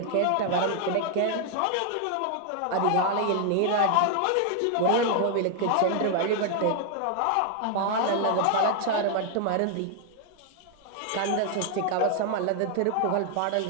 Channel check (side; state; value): both; different; correlation 0.00